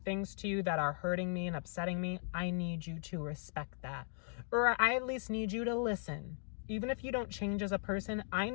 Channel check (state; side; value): silent; right; 53 dB below the other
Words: things to you that are hurting me and upsetting me, I need you to respect that. Or I at least need you to listen. Even if you don't change as a person, I